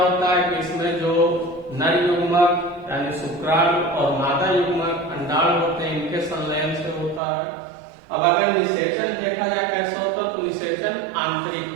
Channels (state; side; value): drops out; left; at 7.2 s